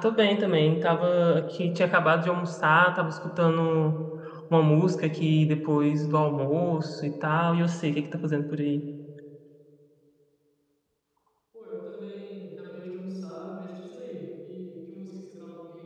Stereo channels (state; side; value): identical; both; correlation 1.00